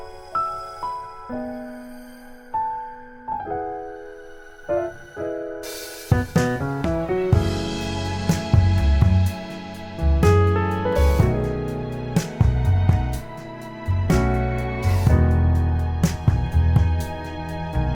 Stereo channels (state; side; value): identical; both; correlation 1.00